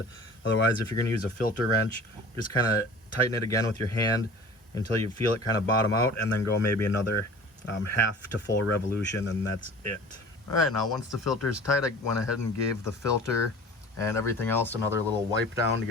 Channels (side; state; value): both; normal; correlation 0.43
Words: Otherwise, if you're going to use a filter wrench, just kind of tighten it again with your hand until you feel it kind of bottom out, and then go maybe another half to full revolution, and that's it. All right, now once the filter is tight, I went ahead and gave the filter and everything else another little wipe down to